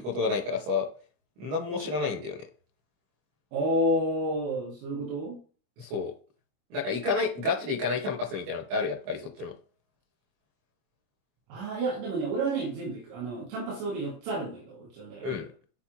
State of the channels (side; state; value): left; late; 25 ms